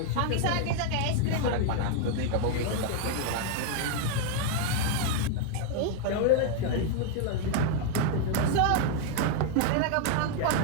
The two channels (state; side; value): different; both; correlation 0.00